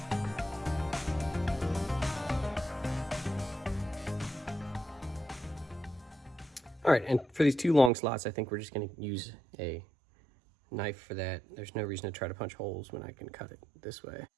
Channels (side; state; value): left; drops out; at 7.9 s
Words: All right, and for these 2 long slots, I think we're just gonna use a knife for that. There's no reason to try to punch holes when I can cut it this way.